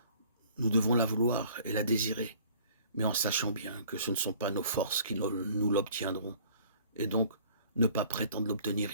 nous devons la vouloir et la désirer, mais en sachant bien que ce ne sont pas nos forces qui nous l'obtiendront, et donc ne pas prétendre l'obtenir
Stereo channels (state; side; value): inverted; both; correlation -0.53